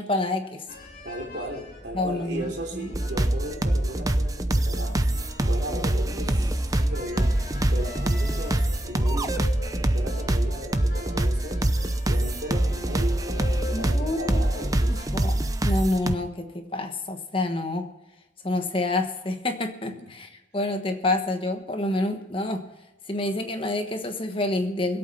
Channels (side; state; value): both; normal; correlation 0.77